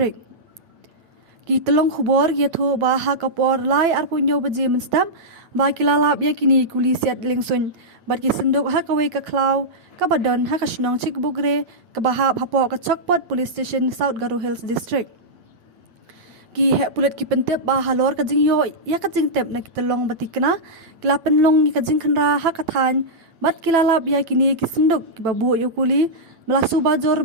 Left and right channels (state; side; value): late; left; 9.0 ms